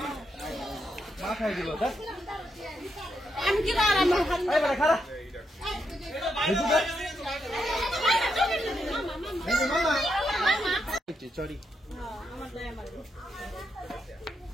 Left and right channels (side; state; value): both; normal; correlation 0.81